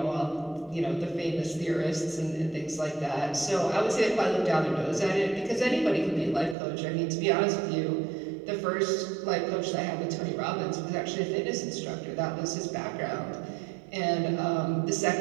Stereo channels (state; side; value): drops out; left; at 6.6 s